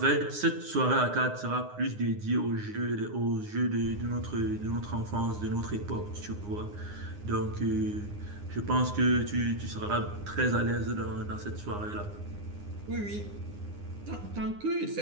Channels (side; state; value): left; late; 9.7 ms